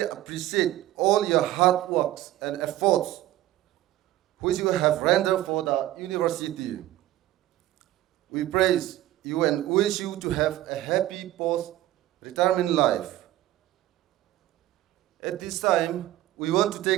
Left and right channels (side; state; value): left; quieter; 14.7 dB